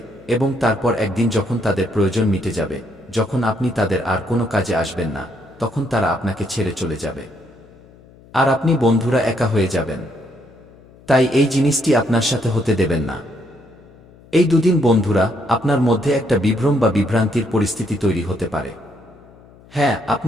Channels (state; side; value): noise; left; hum, 25 dB below the sound